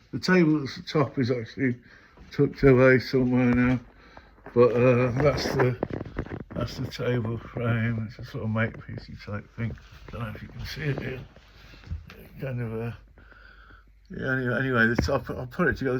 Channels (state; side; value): identical; both; correlation 1.00